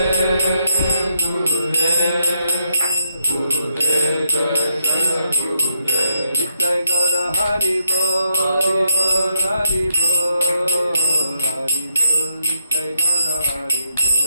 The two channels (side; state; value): both; inverted; correlation -0.78